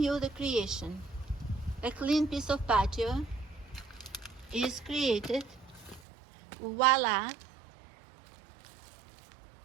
you the creation. A clean piece of patio is created. Voila.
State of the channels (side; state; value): left; drops out; at 6.0 s